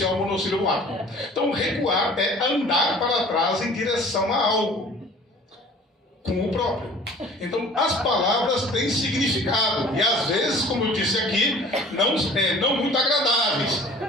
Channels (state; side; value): normal; both; correlation 0.48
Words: o monossílabo ar. Então, recuar é andar para trás em direção a algo. Com o próprio. Então, as palavras têm significado. E às vezes, como eu disse aqui, não muito agradáveis.